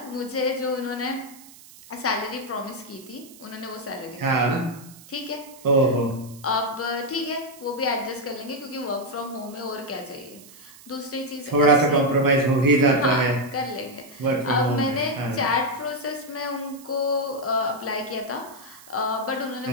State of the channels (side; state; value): right; noise; hiss, 21 dB below the sound